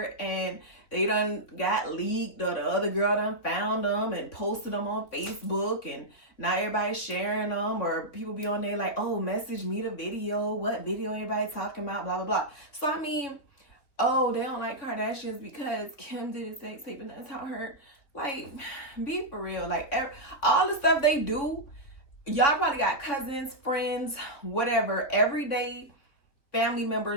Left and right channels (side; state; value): right; late; 3.8 ms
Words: and they done got leaked, or the other girl done found them and posted them on Facebook, and now everybody's sharing them, or people be on there like, oh, message me the video, what video everybody talking about, blah, blah, blah. So, I mean, oh, they don't like Kardashians because Kim did a sex tape and that's how her, like, be for real. Like, all the stuff they do, y'all probably got cousins, friends, whatever, everyday family